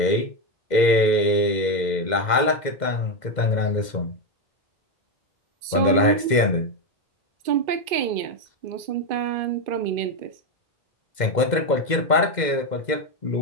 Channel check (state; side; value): late; right; 2.0 ms